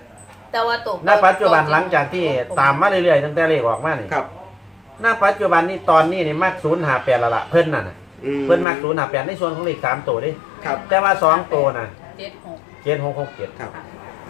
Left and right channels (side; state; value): right; drops out; at 8.7 s